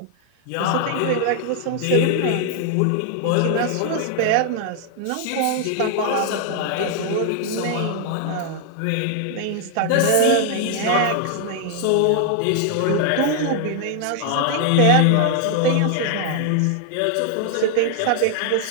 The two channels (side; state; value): both; different; correlation 0.00